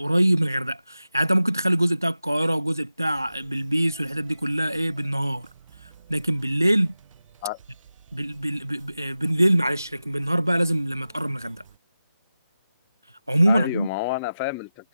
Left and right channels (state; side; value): inverted; both; correlation -0.94